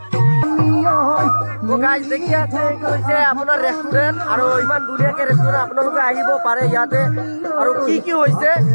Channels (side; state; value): both; inverted; correlation -1.00